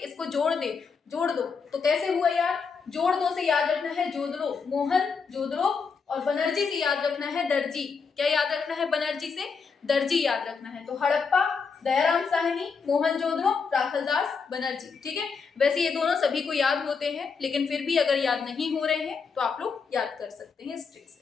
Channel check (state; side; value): quieter; right; 5.4 dB